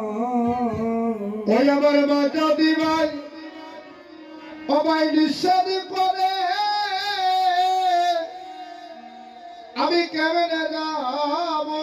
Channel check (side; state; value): both; identical; correlation 1.00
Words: ওই আমার মা যদি ভাই ও ভাই নিষেধ করে আমি কেমনে